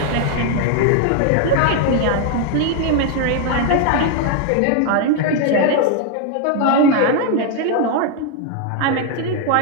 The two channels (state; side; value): different; both; correlation 0.00